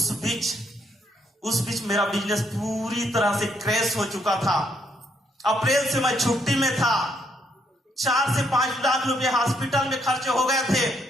उस बीच मेरा बिजनेस पूरी तरह से क्रैश हो चुका था। अप्रैल से मैं छुट्टी में था। 4 से 5 लाख रुपए हॉस्पिटल में खर्चे हो गए थे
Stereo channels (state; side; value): normal; both; correlation 0.73